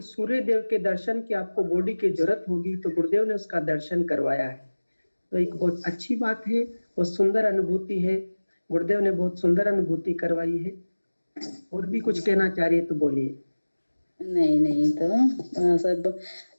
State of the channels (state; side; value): inverted; both; correlation -1.00